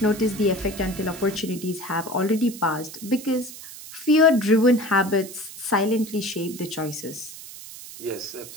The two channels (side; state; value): right; noise; hiss, 14 dB below the sound